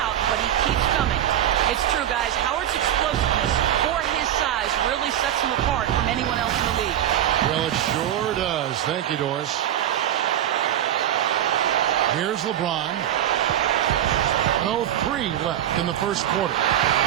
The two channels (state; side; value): quieter; left; 11.2 dB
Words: but he keeps coming. It's true, guys. Howard's explosiveness for his size really sets him apart from anyone else in the league. Well, it sure does. Thank you, Doris. Here's LeBron. 1:03 left in the first quarter.